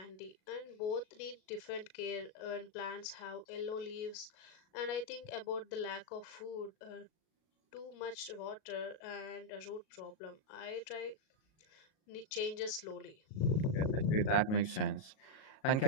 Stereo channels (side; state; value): right; late; 37 ms